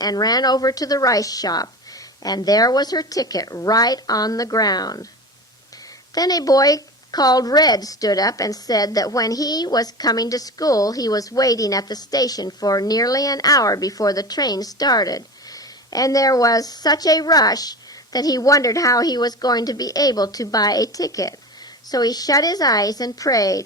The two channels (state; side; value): normal; both; correlation 0.29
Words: ran over to the rice shop, and there was her ticket right on the ground. Then a boy called Red stood up and said that when he was coming to school, he was waiting at the station for nearly an hour before the train started, and there was such a rush that he wondered how he was going to be able to buy a ticket. So he shut his eyes and